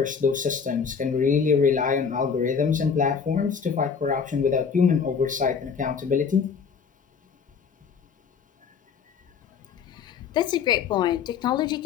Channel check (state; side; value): quieter; right; 6.2 dB